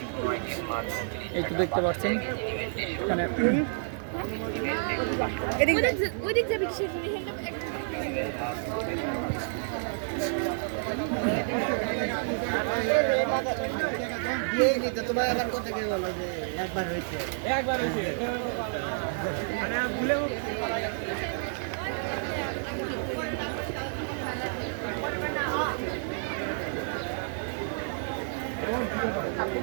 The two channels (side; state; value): left; silent; digital silence